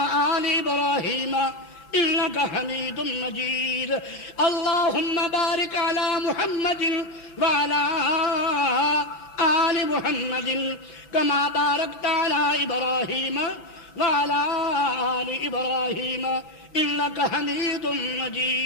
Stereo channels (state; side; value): late; right; 5.9 ms